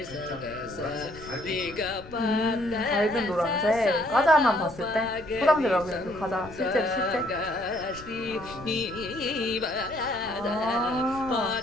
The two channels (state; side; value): noise; left; rumble, 17 dB below the sound